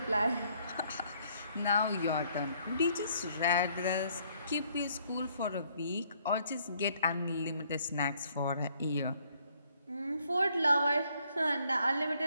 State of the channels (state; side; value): inverted; both; correlation -0.66